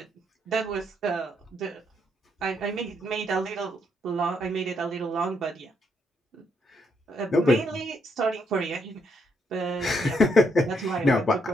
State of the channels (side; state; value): both; normal; correlation 0.75